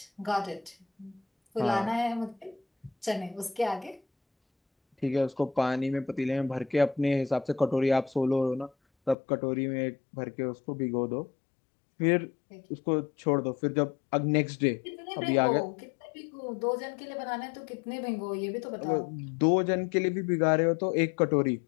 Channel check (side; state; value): right; drops out; at 9.2 s